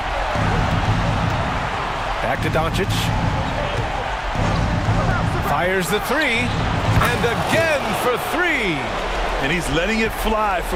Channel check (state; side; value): identical; both; correlation 1.00